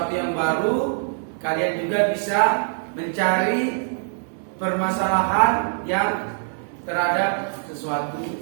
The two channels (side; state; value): left; silent; 60 dB below the other